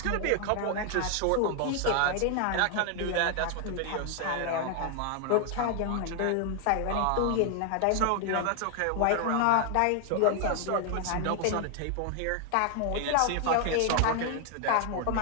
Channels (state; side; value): different; both; correlation 0.00